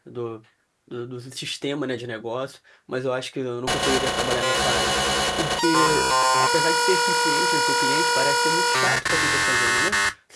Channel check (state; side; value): identical; both; correlation 1.00